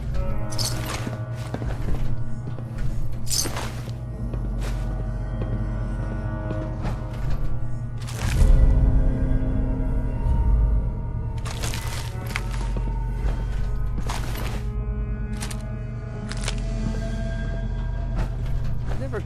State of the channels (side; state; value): both; identical; correlation 1.00